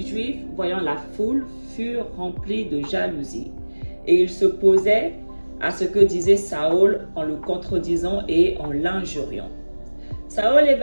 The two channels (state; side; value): inverted; both; correlation -1.00